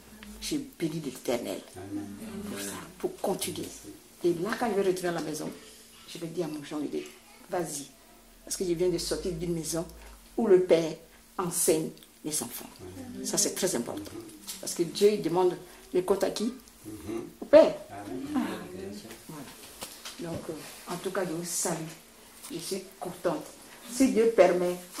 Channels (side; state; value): both; identical; correlation 1.00